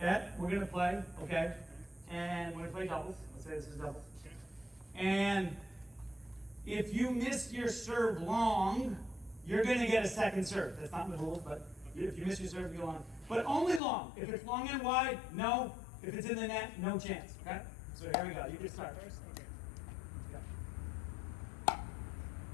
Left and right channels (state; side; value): drops out; right; at 13.8 s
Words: we're gonna play, okay? And we're gonna play doubles. Let's say this is doubles. And if you miss your serve long, you're gonna get a second serve. That's not in the rules, but if you miss your serve, you go on. But only long. If it's long and wide, no. If it's in the net, no chance, okay? So here we go. You can start.